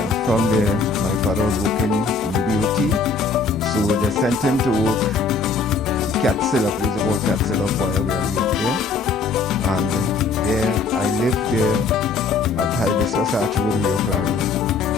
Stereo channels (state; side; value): quieter; right; 4.4 dB